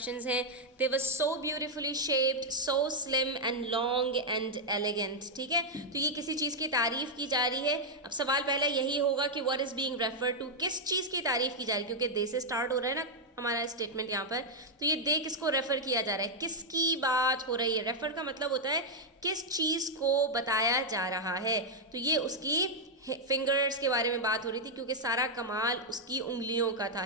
हैं। They was so beautifully shaped, so slim and long and elegant. ठीक है, तो ये किसी चीज़ की तारीफ़ की जा रही है। अब सवाल पहला यही होगा कि what is being refer to, किस चीज़ की तारीफ़ की जा रही है, क्योंकि दे से स्टार्ट हो रहा है ना हमारा स्टेटमेंट यहाँ पर। तो ये दे किसको रेफ़र किया जा रहा है, किसकी बात हो रही है। रेफ़र का मतलब होता है किस चीज़ को बताया जा रहा है। तो ये उसकी फिंगर्स के बारे में बात हो रही थी, क्योंकि सारा कमाल उसकी उंगलियों का था,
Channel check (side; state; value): both; normal; correlation -0.01